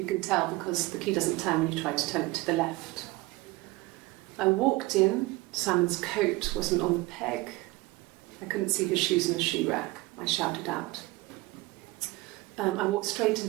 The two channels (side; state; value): left; quieter; 21.3 dB